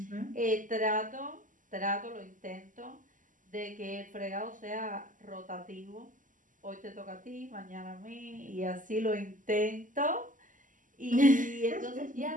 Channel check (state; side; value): late; left; 0.38 ms